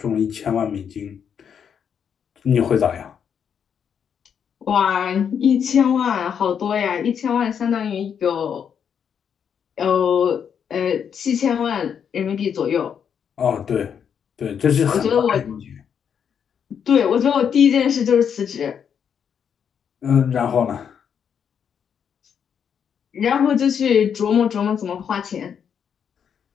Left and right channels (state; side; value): quieter; right; 7.7 dB